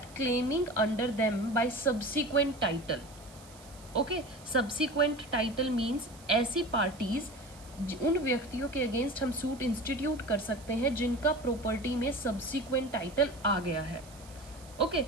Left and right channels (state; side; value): noise; right; hiss, 22 dB below the sound